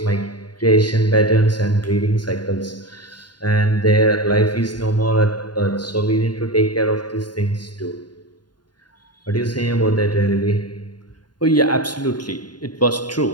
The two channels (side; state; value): right; late; 0.70 ms